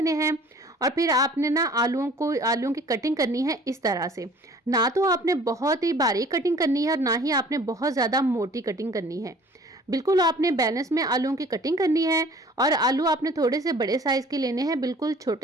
हैं और फिर आपने ना आलूओं की कटिंग करनी है इस तरह से। ना तो आपने बहुत ही बारीक कटिंग करनी है और ना ही आपने बहुत ज़्यादा मोटी कटिंग करनी है। बिल्कुल आपने बैलेंस में आलूओं की कटिंग करनी है और आलू आपने थोड़े से बड़े साइज़ के लेने हैं, बिल्कुल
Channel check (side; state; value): both; normal; correlation 0.50